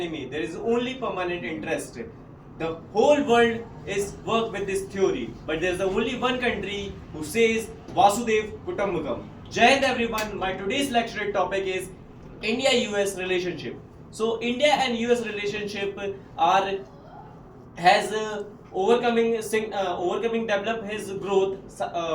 There is only permanent interest. The whole world is work with this theory, but there is only one country who says Vasudev Kutumbakam. Jai Hind everyone. My today's lecture topic is India-US relationship. So India and US relationship are has overcoming develop his growth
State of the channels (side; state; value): both; identical; correlation 1.00